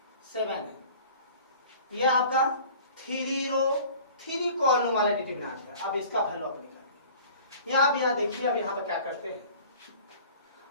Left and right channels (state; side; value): inverted; both; correlation -0.46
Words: 7 है। यह आपका 3 रो 3 कॉलम वाले डिटरमिनेंट है। अब इसका वैल्यू आप निकालिए। या आप यहाँ देखिए, अब यहाँ पर क्या करते हैं,